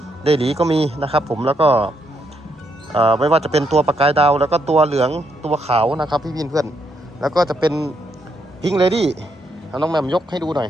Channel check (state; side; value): normal; both; correlation 0.77